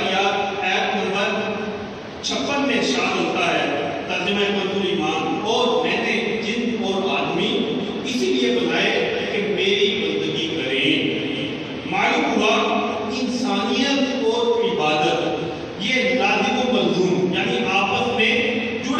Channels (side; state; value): both; identical; correlation 1.00